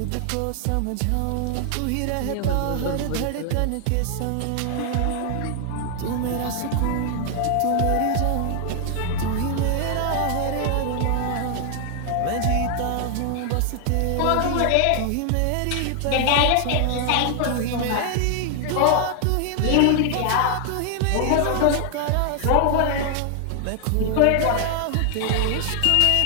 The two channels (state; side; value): different; both; correlation 0.00